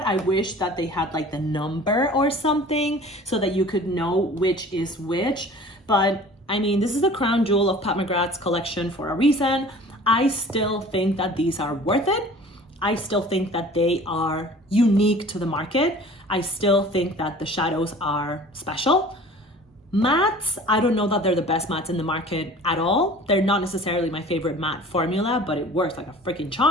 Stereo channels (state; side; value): normal; both; correlation 0.45